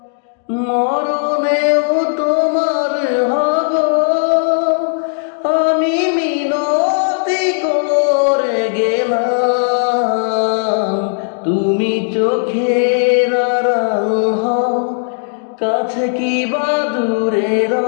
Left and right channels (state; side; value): silent; right; digital silence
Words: মরণেও তোমার হব। আমি মিনতি করে গেলাম, তুমি চোখের আড়াল হও, কাছে কি বা দূরে